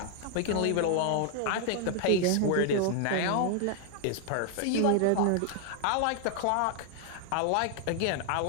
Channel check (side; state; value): both; different; correlation 0.00